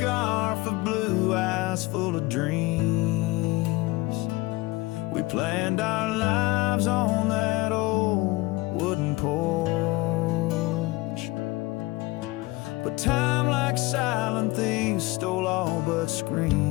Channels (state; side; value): quieter; right; 21.4 dB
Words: of blue eyes full of dreams. We planned our lives on that old wooden porch, but time, like silent thieves, stole all but